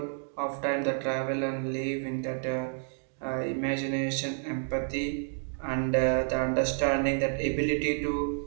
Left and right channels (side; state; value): left; silent; digital silence